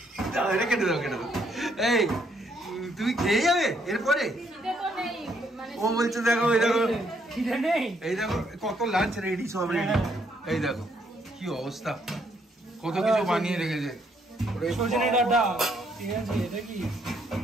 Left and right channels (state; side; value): normal; both; correlation 0.71